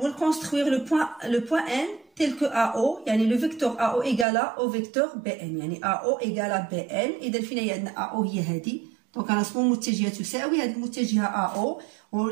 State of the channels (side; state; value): left; drops out; at 4.2 s